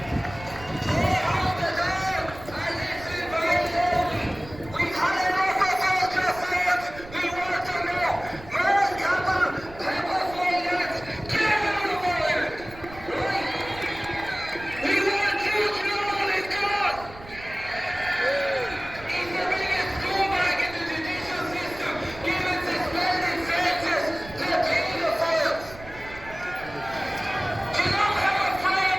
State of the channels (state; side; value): noise; right; rumble, 17 dB below the sound